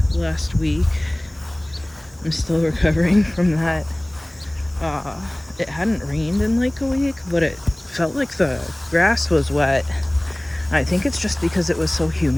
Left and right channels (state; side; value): noise; right; hiss, 28 dB below the sound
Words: last week. I'm still recovering from that. It hadn't rained in like a week, but it felt like the grass was wet. I think it's just because it was so